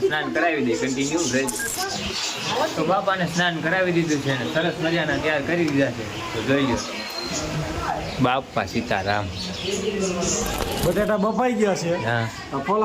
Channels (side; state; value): both; identical; correlation 1.00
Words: સ્નાન કરાવી દે, કન્ટિન્યુ રહેજો। તો બાપાને સ્નાન કરાવી દીધું છે ને સરસ મજાના તૈયાર કરી દીધા છે તો જોઈ લો। બાપા સીતારામ। બટેટા બફાઈ ગયા છે, હા